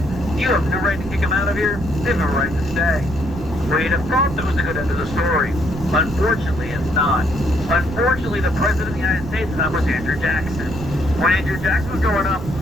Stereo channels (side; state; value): right; noise; rumble, 9 dB below the sound